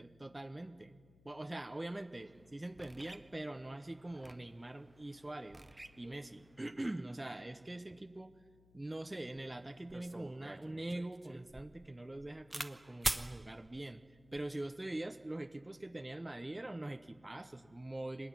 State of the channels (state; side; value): noise; left; hum, 24 dB below the sound